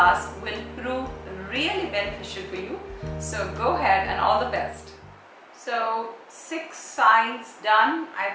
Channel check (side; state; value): both; identical; correlation 1.00